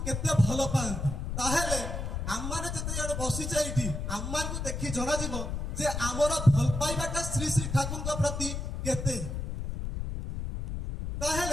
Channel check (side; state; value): left; noise; rumble, 4 dB below the sound